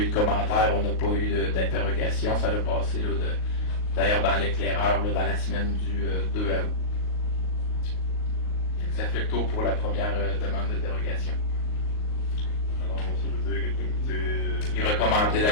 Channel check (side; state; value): right; late; 38 ms